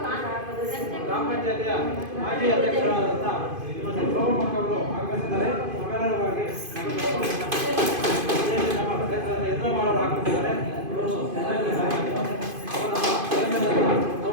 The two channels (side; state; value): left; late; 2.5 ms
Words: ಗ್ರಾಮ ಪಂಚಾಯತಿಯ ಮಾಜಿ ಅಧ್ಯಕ್ಷರಾದಂಥ ಶ್ರೀಮತಿ ಸೋಮಕ್ಕ ಅವರು ಆಗಮಿಸಿದ್ದಾರೆ. ನಮ್ಮೆಲ್ಲರ ಪರವಾಗಿ ನಮ್ಮ ಕ್ಷೇತ್ರದ ಯಜ್ಞಮಾಳವರು ಆಗಮಿಸಿದ್ದಾರೆ.